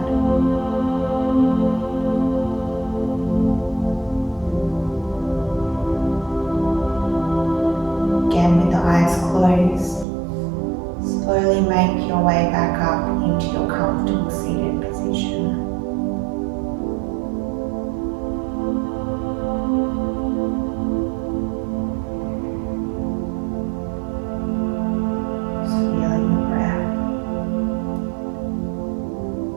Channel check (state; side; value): drops out; left; at 10.1 s